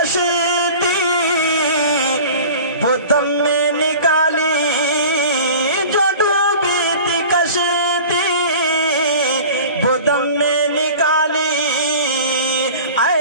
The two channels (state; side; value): inverted; both; correlation -0.40